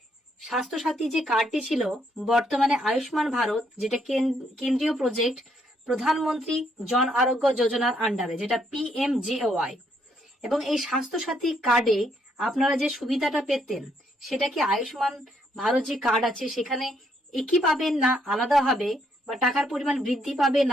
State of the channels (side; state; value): both; normal; correlation 0.73